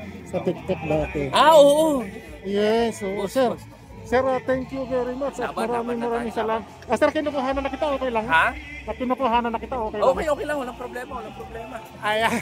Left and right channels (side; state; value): both; identical; correlation 1.00